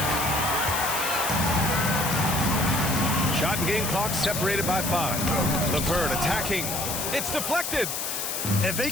Shot and game clock separated by 5. LeVert attacking. It's deflected. And they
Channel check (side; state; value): left; noise; hiss, 3 dB below the sound